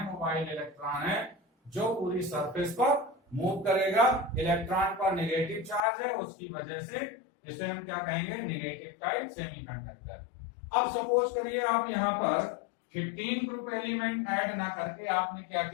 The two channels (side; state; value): right; drops out; at 5.8 s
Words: मोबाइल इलेक्ट्रॉन है, जो पूरी सरफेस पर मूव करेगा, इलेक्ट्रॉन पर नेगेटिव चार्ज है, उसकी वजह से इसे हम क्या कहेंगे, नेगेटिव टाइप सेमीकंडक्टर। अब सपोज करिए आप यहाँ पर 15 ग्रुप एलिमेंट ऐड ना करके आपने क्या